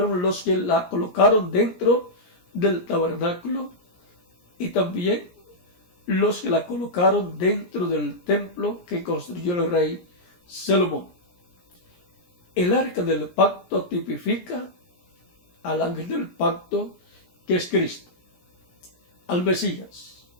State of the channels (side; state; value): right; late; 17 ms